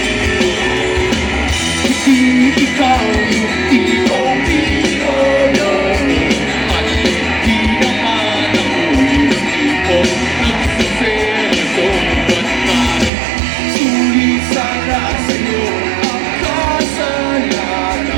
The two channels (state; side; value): drops out; left; at 13.1 s